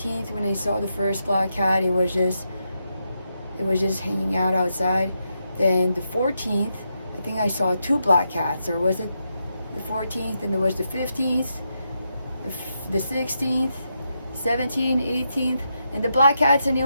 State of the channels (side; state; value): both; inverted; correlation -0.83